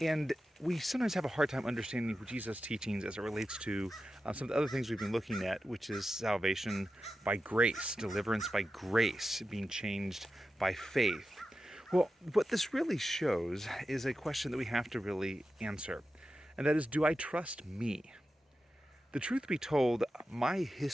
we sometimes have a hard time understanding Jesus' teachings as it relates to some of the other things we've been looking at, which is salvation by grace, deliverance by grace, being changed by faith. Well, what this really shows is a question that we have to really answer, and that is, do I trust me? The truth be told, my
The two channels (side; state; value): both; normal; correlation 0.91